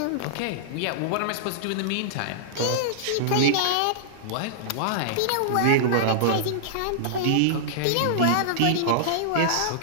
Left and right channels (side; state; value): both; different; correlation -0.02